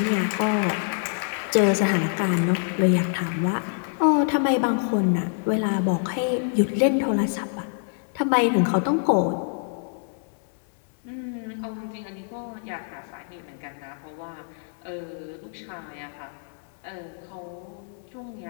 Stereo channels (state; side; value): silent; right; 61 dB below the other